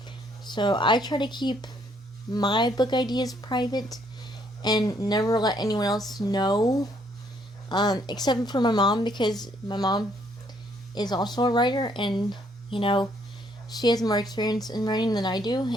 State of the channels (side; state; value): both; normal; correlation 0.68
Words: So I try to keep my book ideas private and never let anyone else know, except for my mom, because my mom is also a writer, and she has more experience in writing than I do,